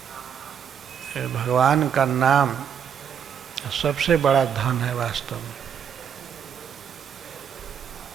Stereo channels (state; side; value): quieter; left; 8.0 dB